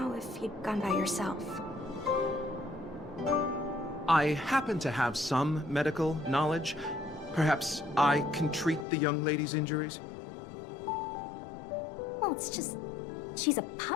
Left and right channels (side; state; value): right; drops out; at 8.8 s